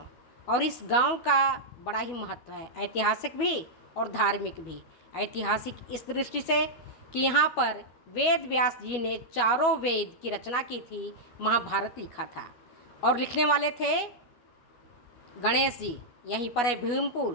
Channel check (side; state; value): right; late; 12 ms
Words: और इस गांव का बड़ा ही महत्व है, ऐतिहासिक भी और धार्मिक भी। ऐतिहासिक इस दृष्टि से कि यहाँ पर वेद व्यास जी ने चारों वेद की रचना की थी, महाभारत लिखा था। और लिखने वाले थे गणेश जी। यहीं पर है